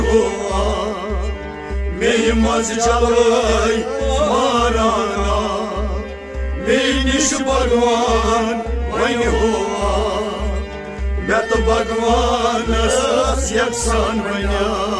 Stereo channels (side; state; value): both; identical; correlation 1.00